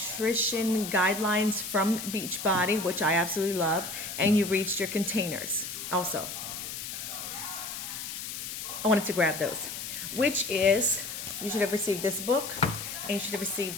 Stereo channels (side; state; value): left; noise; hiss, 7 dB below the sound